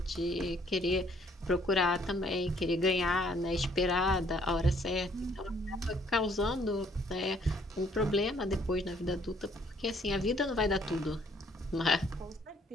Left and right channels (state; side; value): normal; both; correlation 0.63